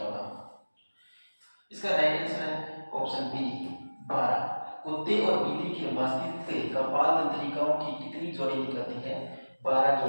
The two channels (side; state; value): both; inverted; correlation -1.00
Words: होगा। इसका राइट आंसर है ऑप्शन बी 12। कुत्ते और बिल्ली के मस्तिष्क से कपाल तंत्रिकाओं की कितनी जोड़ी निकलती है, 12